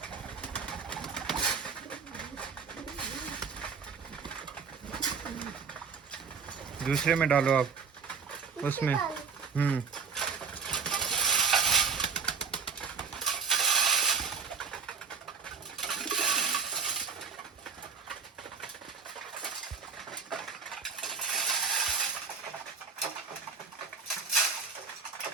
दूसरे में डालो आप, उसमें। इससे डालें।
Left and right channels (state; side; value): quieter; left; 5.5 dB